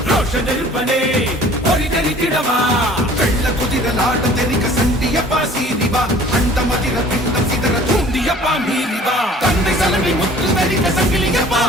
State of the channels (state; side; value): normal; both; correlation 0.50